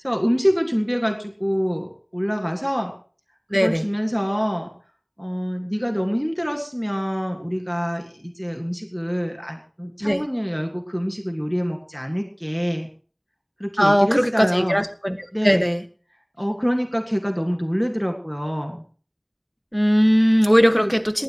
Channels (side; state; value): both; identical; correlation 1.00